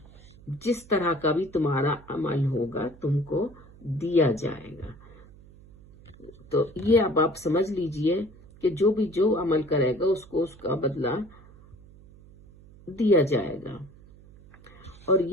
جس طرح کا بھی تمہارا عمل ہوگا تم کو دیا جائے گا. تو یہ اب آپ سمجھ لیجئے کہ جو بھی جو عمل کرے گا اس کو اس کا بدلہ دیا جائے گا. اور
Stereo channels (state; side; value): noise; right; hum, 23 dB below the sound